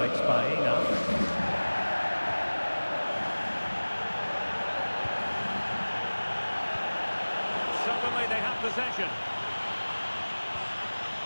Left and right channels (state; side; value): inverted; both; correlation -1.00